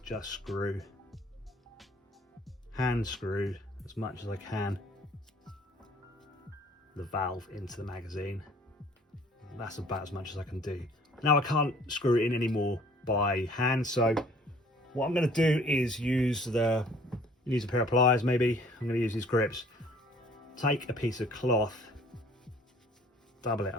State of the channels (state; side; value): normal; both; correlation 0.55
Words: just hand screw as much as I can the valve into the magazine. That's about as much as I can do. Now I can't screw it in anymore by hand, so what I'm going to do is use a pair of pliers maybe. I'm going to use these grips. Take a piece of cloth, double it